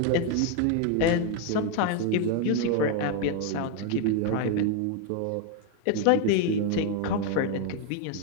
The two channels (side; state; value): both; different; correlation 0.01